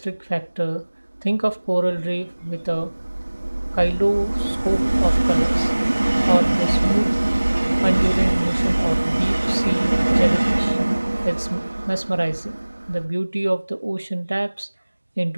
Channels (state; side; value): inverted; both; correlation -1.00